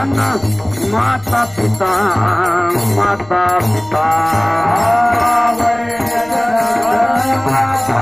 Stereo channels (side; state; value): left; noise; rumble, 25 dB below the sound